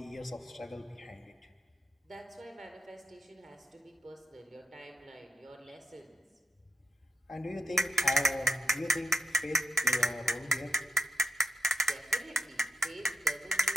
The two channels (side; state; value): both; normal; correlation 0.87